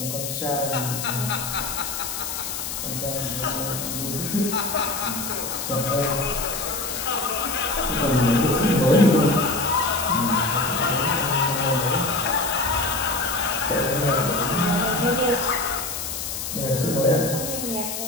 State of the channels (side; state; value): left; noise; hiss, 5 dB below the sound